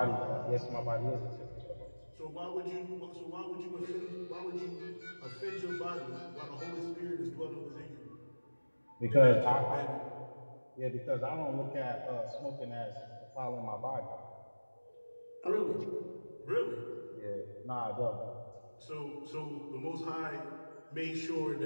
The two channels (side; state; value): both; inverted; correlation -1.00